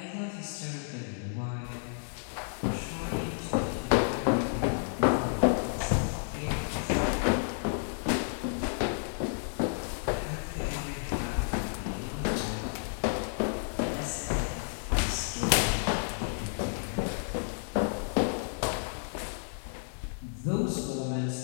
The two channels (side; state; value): right; silent; digital silence